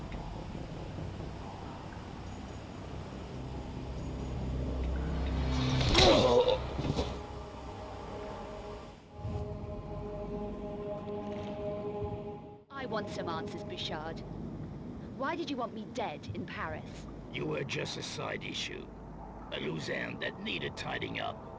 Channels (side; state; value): both; identical; correlation 1.00